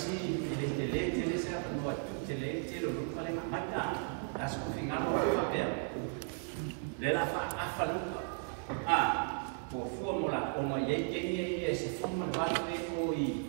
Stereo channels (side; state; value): left; silent; 54 dB below the other